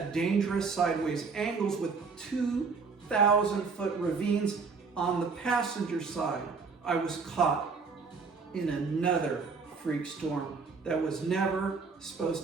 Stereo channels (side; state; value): left; quieter; 4.9 dB